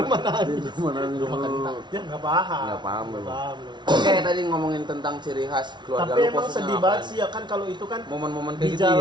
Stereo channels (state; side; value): late; left; 0.22 ms